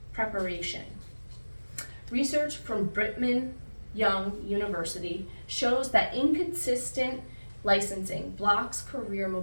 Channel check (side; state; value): both; inverted; correlation -1.00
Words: preparation. Research from Brigham Young University shows that inconsistent licensing blocks career